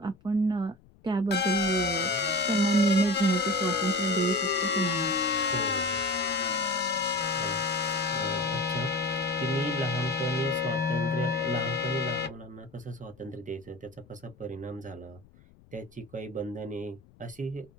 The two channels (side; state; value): left; noise; rumble, 27 dB below the sound